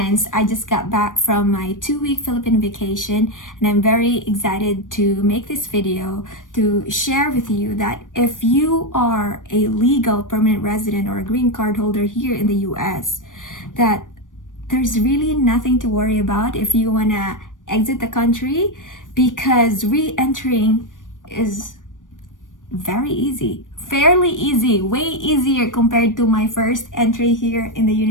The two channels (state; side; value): late; right; 0.88 ms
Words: I just got back from my 2-week Philippine vacation and I'm very excited to make this video to share with you that if you are a legal permanent resident or a green card holder here in the US, that there's really nothing to worry about if you want to exit the country, because re-entering is very easy, fairly easy, way easier compared to my first entry here in the